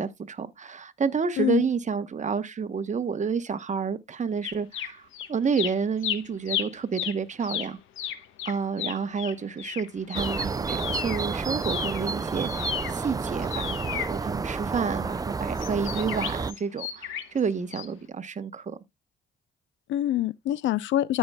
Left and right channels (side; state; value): both; normal; correlation 0.44